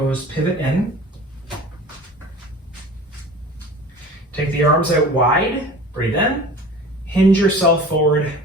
pivot in. Take the arms out wide, breathe in, hinge yourself forward.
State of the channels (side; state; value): both; normal; correlation 0.40